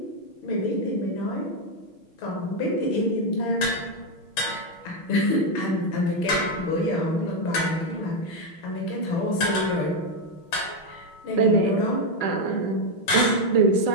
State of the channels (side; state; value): right; late; 6.3 ms